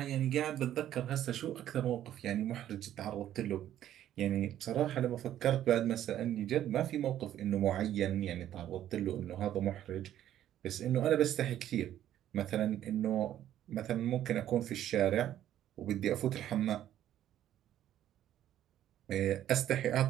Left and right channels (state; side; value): quieter; left; 11.8 dB